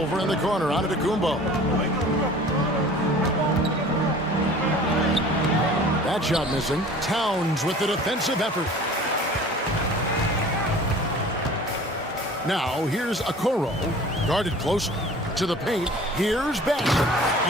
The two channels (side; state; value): both; normal; correlation 0.45